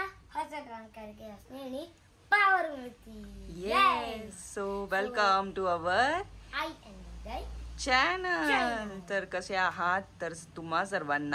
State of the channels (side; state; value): both; identical; correlation 1.00